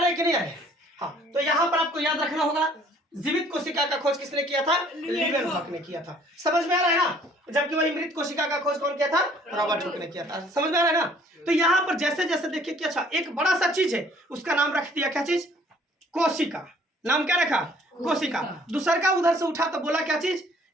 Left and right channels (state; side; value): normal; both; correlation 0.58